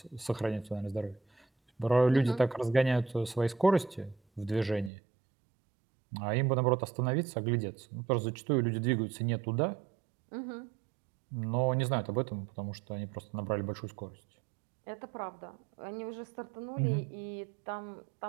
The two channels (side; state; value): left; drops out; at 4.9 s